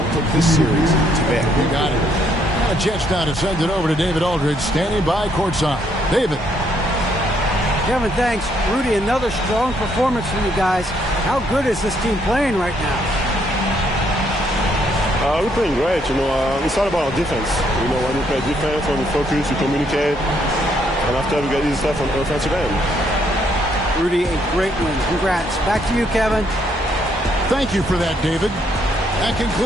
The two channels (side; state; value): both; normal; correlation 0.71